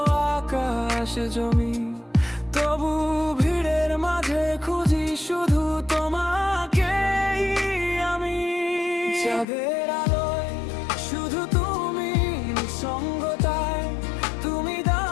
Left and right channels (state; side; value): drops out; right; at 9.5 s